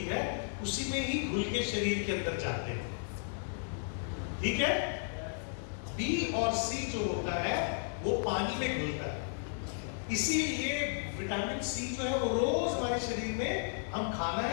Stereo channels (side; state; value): right; silent; digital silence